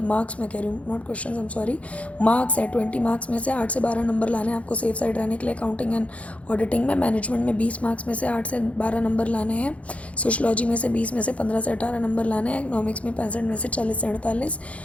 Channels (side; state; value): right; late; 0.064 ms